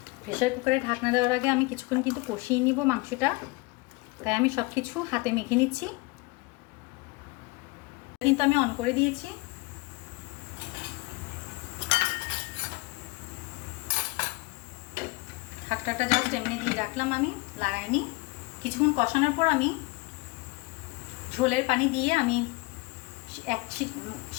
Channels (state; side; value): quieter; right; 25.3 dB